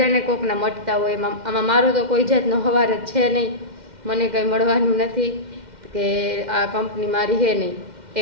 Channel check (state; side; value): late; left; 2.1 ms